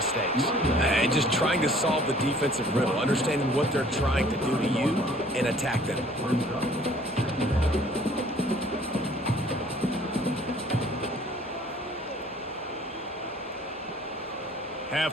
And just trying to solve the defensive riddle, understanding what they're trying to do to you and attack them.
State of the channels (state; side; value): normal; both; correlation 0.55